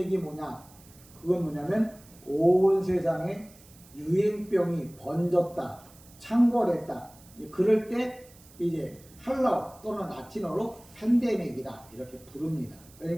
뭐냐? 그건 뭐냐면 온 세상에 유행병이 번졌다, 창궐했다. 그럴 때 이제 헬라어 또는 라틴어로 팬데믹이다 이렇게 부릅니다.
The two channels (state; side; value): noise; right; hiss, 24 dB below the sound